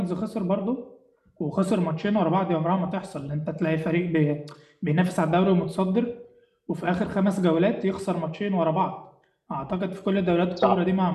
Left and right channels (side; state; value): both; identical; correlation 1.00